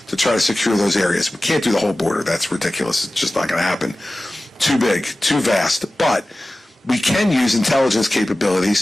try to secure those areas. We can't do the whole border. That's ridiculous. It's just not going to happen. Too big, too vast. But we can use intelligence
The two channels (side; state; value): both; normal; correlation 0.96